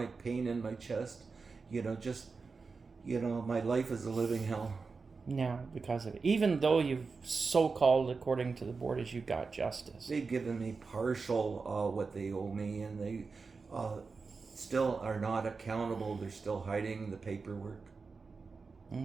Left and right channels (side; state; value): left; quieter; 4.6 dB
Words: pain in my chest. My life is a living hell. Now, because of it. Even though you've so-called, according to the board, as you got justice. They've given me partial what they owe me, and they still are not accountable. They're still hiding the paperwork.